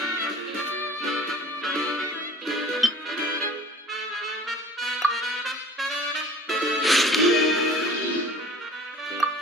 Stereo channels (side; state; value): both; normal; correlation 0.45